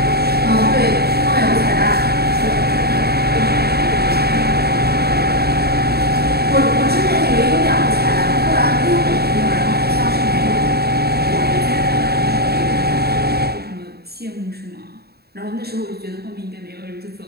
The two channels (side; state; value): left; late; 0.46 ms